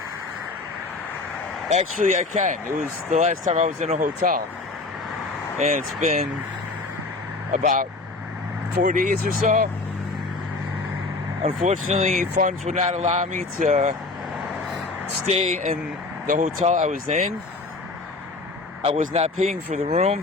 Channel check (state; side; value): quieter; right; 3.5 dB